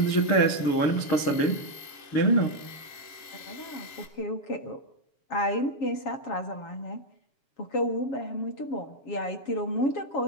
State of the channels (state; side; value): late; right; 7.2 ms